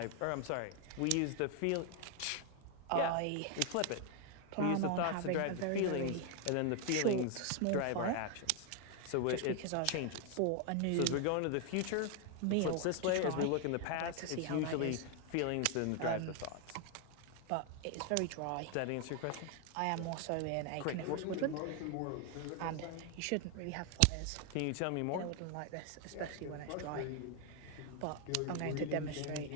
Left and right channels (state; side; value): different; both; correlation 0.00